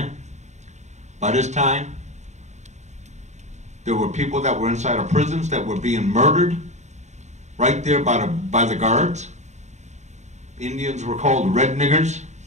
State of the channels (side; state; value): left; late; 0.34 ms